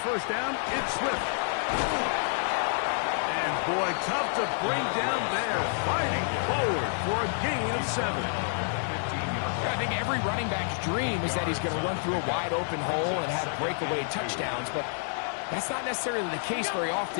first down, it's Swift. And boy, tough to bring down there. Fighting forward for a gain of 7. I think every running back's dream is that he's going to run through a wide open hole and have breakaway touchdowns, but that's not necessarily the case very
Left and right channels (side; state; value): right; silent; digital silence